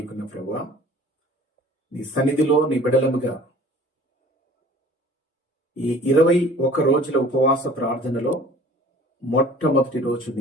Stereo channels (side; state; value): both; normal; correlation 0.48